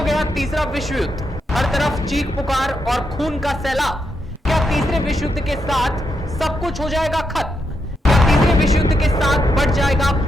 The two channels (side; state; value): both; normal; correlation 0.82